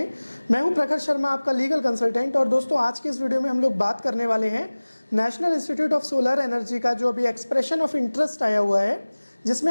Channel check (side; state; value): both; inverted; correlation -1.00